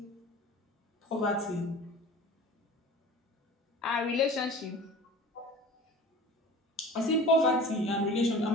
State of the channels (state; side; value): normal; both; correlation 0.40